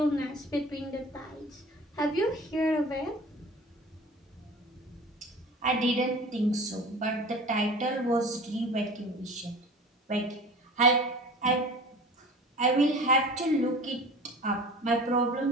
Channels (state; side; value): normal; both; correlation 0.40